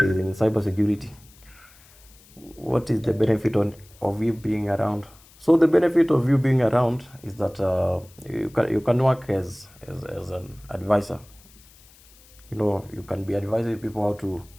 in cybersecurity. What is the benefit of you being around? So the benefit of you being around is that you can work as an advisor. You can be advising people how to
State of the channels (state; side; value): noise; left; hiss, 26 dB below the sound